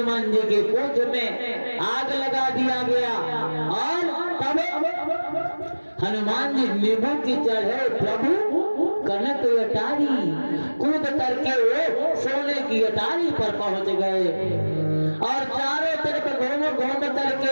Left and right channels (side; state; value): both; inverted; correlation -1.00